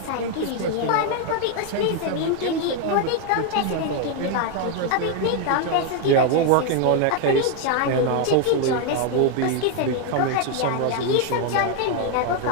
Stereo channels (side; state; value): both; different; correlation 0.01